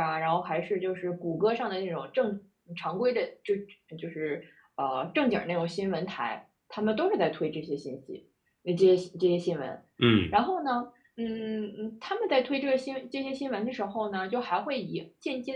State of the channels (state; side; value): identical; both; correlation 1.00